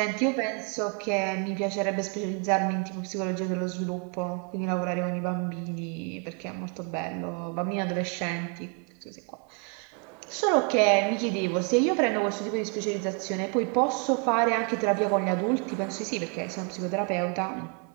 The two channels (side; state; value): left; quieter; 37.0 dB